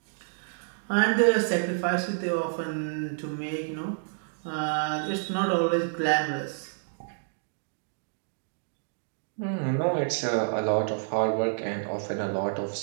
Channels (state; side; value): silent; left; digital silence